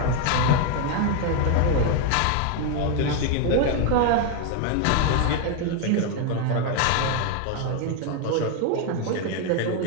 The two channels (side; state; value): both; different; correlation 0.01